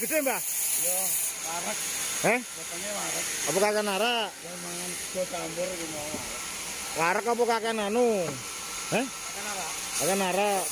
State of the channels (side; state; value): both; identical; correlation 1.00